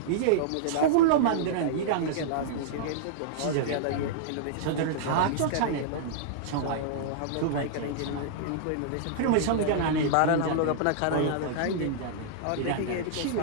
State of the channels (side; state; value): both; different; correlation -0.02